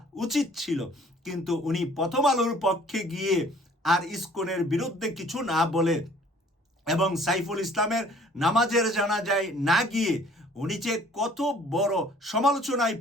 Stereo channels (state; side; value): normal; both; correlation 0.54